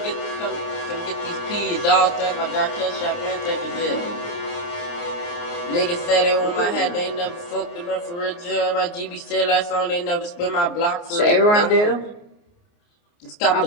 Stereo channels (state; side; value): late; right; 29 ms